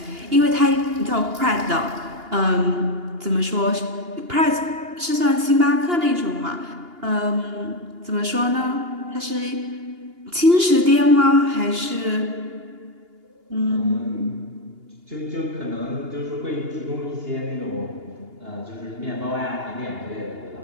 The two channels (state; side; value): late; left; 2.8 ms